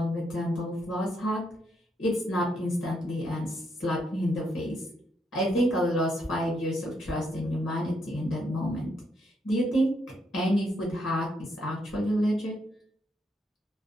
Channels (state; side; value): normal; both; correlation 0.76